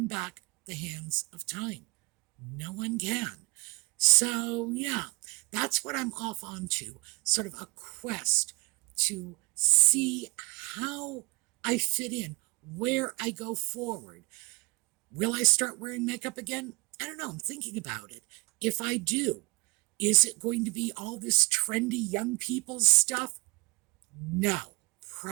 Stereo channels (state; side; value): quieter; left; 26.5 dB